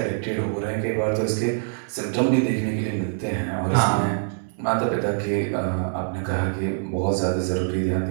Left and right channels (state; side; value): silent; left; 62 dB below the other